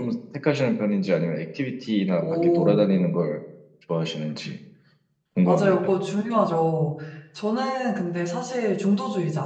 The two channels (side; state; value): both; identical; correlation 1.00